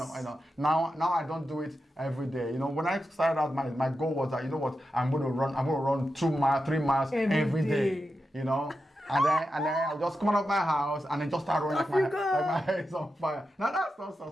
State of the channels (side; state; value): both; normal; correlation 0.89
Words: now I don't do it every day. You know, when I started out, my goal was that, you know what, I'm going to run 2 miles, 3 miles every day. You know. And then I'll just come out of my house and then just start running like my head is on fire. Now that's not